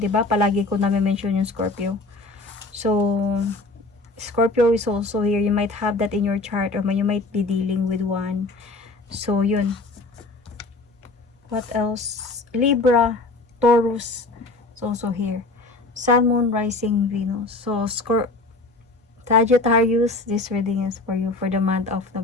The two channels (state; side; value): quieter; right; 3.2 dB